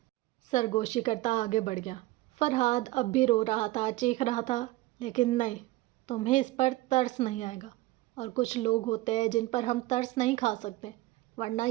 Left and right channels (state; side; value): quieter; left; 18.3 dB